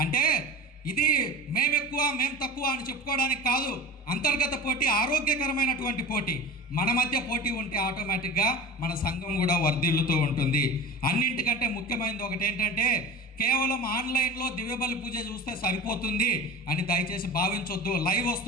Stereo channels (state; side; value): normal; both; correlation 0.32